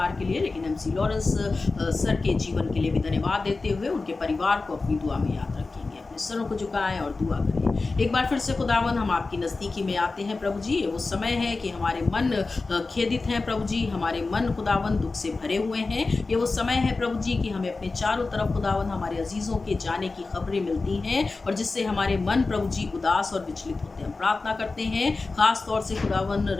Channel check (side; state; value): right; quieter; 3.7 dB